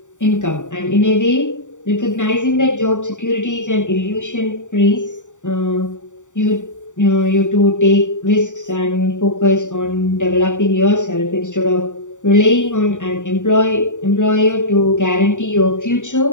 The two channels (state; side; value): late; right; 0.86 ms